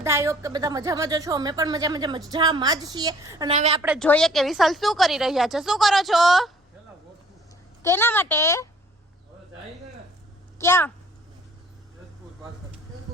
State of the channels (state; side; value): normal; both; correlation 0.56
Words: આઈ હોપ કે બધા મજામાં જ છો. અમે પણ મજામાં જ છીએ. અને હવે આપણે જોઈએ કે વિશાલ શું કરી રહ્યા છે. શું કરો છો? કેના માટે? ક્યાં?